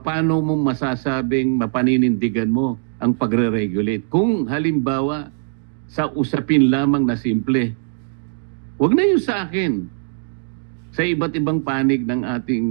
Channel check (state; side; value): silent; left; digital silence